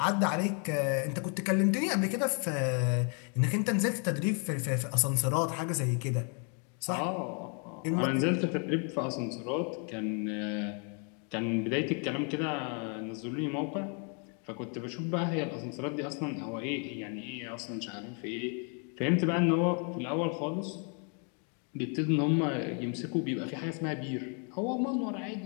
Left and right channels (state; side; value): quieter; right; 39.2 dB